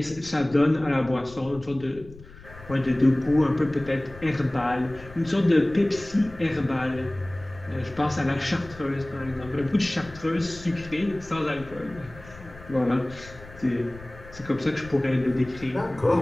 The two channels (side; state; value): left; noise; rumble, 18 dB below the sound